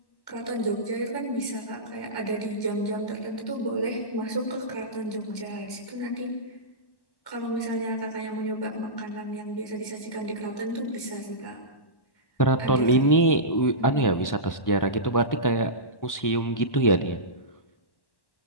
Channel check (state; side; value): late; right; 1.1 ms